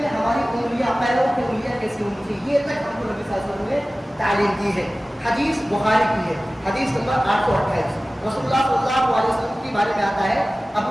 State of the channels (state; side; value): normal; both; correlation 0.97